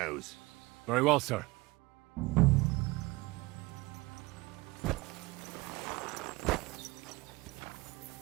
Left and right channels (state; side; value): quieter; left; 22.5 dB